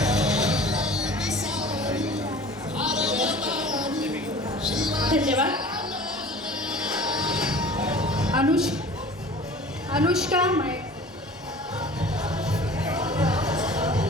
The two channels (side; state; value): both; normal; correlation 0.43